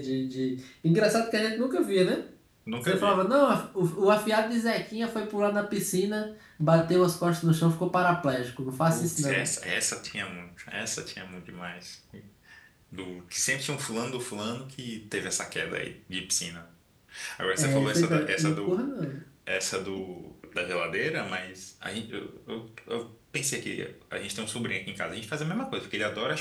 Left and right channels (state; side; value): identical; both; correlation 1.00